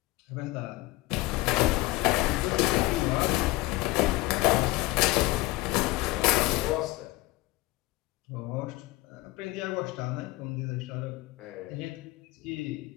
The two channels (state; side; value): quieter; right; 19.9 dB